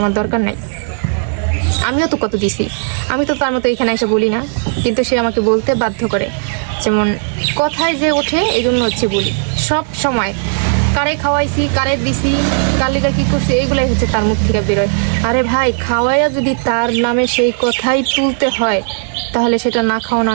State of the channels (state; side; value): silent; left; digital silence